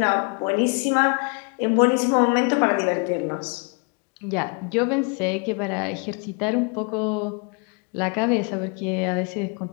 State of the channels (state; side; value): quieter; right; 35.9 dB